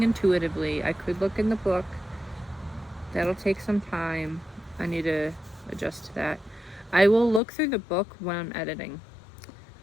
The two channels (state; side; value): drops out; right; at 7.4 s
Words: intuitively. I could look in the book. That'll take some time. I need to adjust to that. I will look through the book when I'm editing,